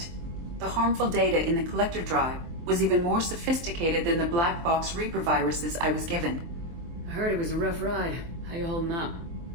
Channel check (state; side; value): late; left; 24 ms